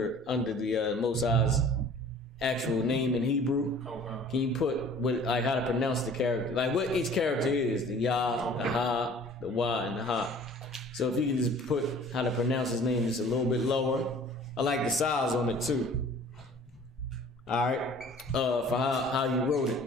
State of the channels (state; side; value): normal; both; correlation 0.49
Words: the Most High's actual name in Hebrew. Can you put like how to pronounce the character, like what each character is, the Yah, the Ha, the Wa, and the Ha. So if you can just put how to pronounce his name just a little bit lower. I like the size on it too. All right, for how you wrote